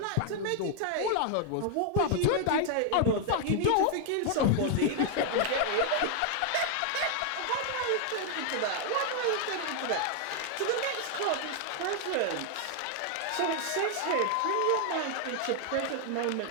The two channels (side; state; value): both; different; correlation 0.00